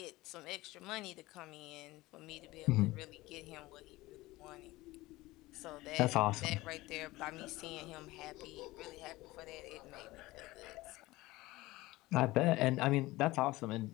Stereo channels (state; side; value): quieter; right; 19.3 dB